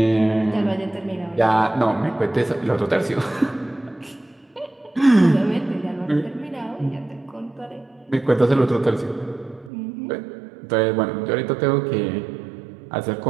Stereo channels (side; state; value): left; drops out; at 9.7 s